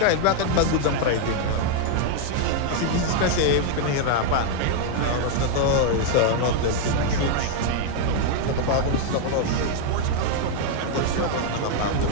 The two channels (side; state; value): both; different; correlation 0.00